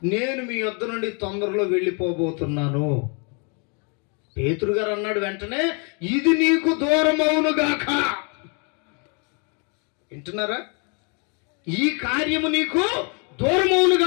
నేను మీ యొద్ద నుండి తొందరలో వెళ్ళిపోబోతున్నాను. పేతురు గారు అన్నాడు వెంటనే, ఇది నీకు దూరం అవునుగాక. వింటున్నారా? ఈ కార్యము నీకు దూరం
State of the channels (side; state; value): right; quieter; 36.0 dB